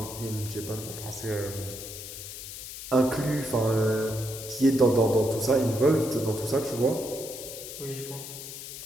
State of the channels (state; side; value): noise; left; hiss, 10 dB below the sound